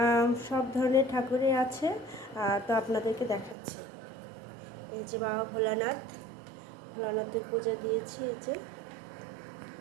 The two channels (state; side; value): drops out; left; at 3.6 s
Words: সব ধরনের ঠাকুরই আছে। তো আপনাদেরকে দেখাচ্ছি। এই যে বাবা ভোলানাথের পূজা দিয়েছি। এই যে